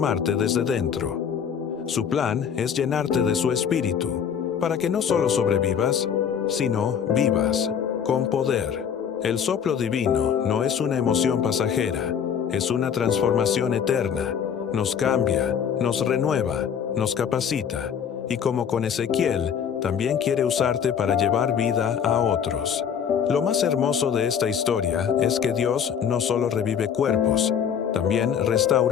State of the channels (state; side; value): quieter; right; 7.8 dB